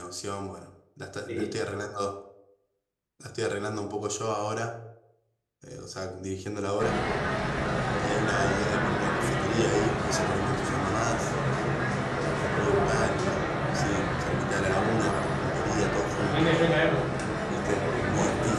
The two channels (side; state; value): both; identical; correlation 1.00